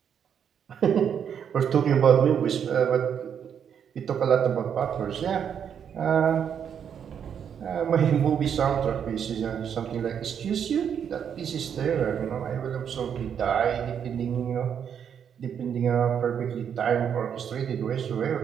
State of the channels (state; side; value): quieter; left; 8.1 dB